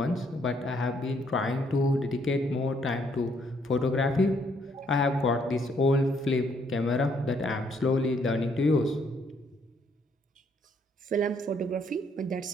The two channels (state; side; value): normal; both; correlation 0.69